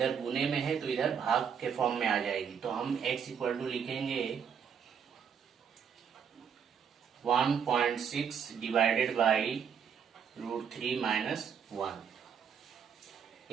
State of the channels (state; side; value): quieter; left; 7.3 dB